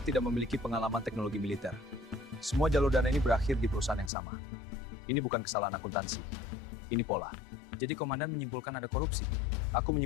memiliki pengalaman teknologi militer. Semua jalur dana ini berakhir di perusahaan yang sama. Ini bukan kesalahan akuntansi. Ini pola. Jadi Komandan menyimpulkan ada korupsi. Aku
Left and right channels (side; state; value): right; drops out; at 4.1 s